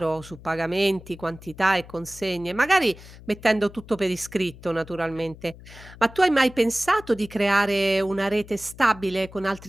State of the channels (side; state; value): left; noise; hum, 19 dB below the sound